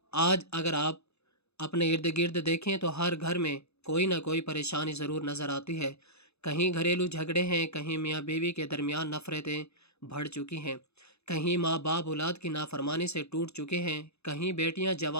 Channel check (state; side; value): late; right; 0.79 ms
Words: آج اگر آپ اپنے ارد گرد دیکھیں تو ہر گھر میں کوئی نہ کوئی پریشانی ضرور نظر آتی ہے۔ کہیں گھریلو جھگڑے ہیں، کہیں میاں بیوی کے درمیان نفرتیں بڑھ چکی ہیں، کہیں ماں باپ اولاد کی نافرمانی سے ٹوٹ چکے ہیں، کہیں بیٹیاں